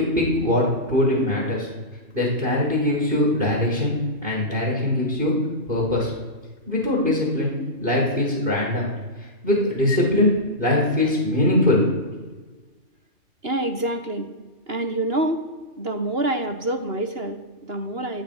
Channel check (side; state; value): left; late; 2.9 ms